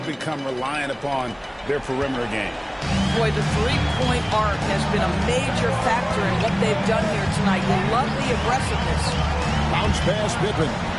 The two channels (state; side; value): identical; both; correlation 1.00